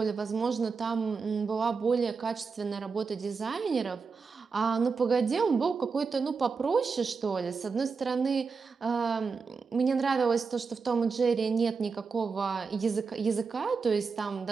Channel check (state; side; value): quieter; left; 5.0 dB